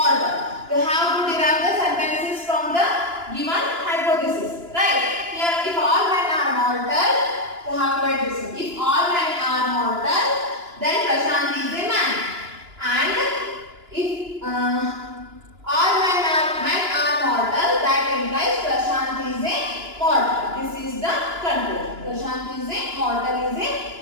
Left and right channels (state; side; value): late; left; 2.9 ms